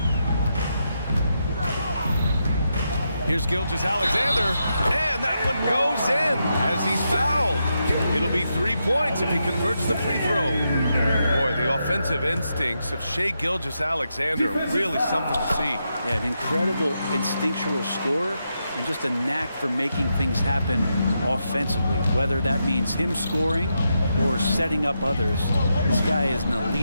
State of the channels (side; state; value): both; inverted; correlation -0.84